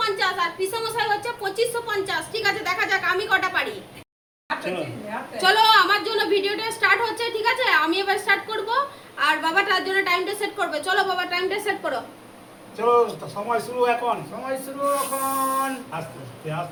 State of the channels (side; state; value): both; identical; correlation 1.00